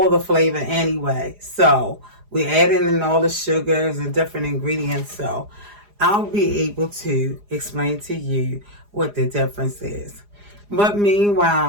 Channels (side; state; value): left; late; 4.9 ms